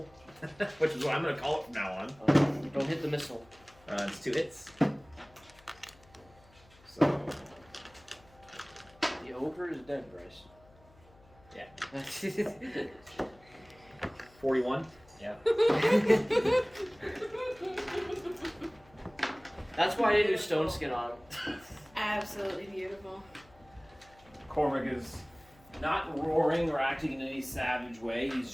which is what I'm going to call it from now on. Don't hit the missile. It's 2 hits. So, The ogre is dead, Bryce. yeah, Yeah. 41. Yeah. That's why I didn't do stone skin on him. Absolutely beautiful. Cormac is not roaring or acting in any savage way. He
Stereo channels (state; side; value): noise; left; hum, 27 dB below the sound